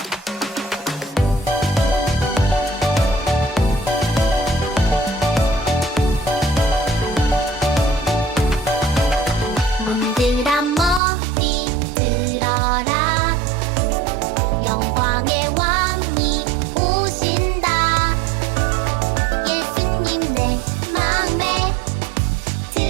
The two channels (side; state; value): left; drops out; at 11.0 s